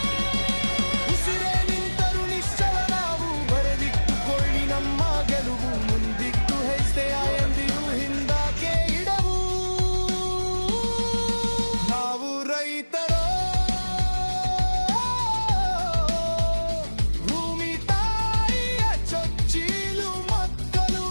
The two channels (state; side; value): inverted; both; correlation -1.00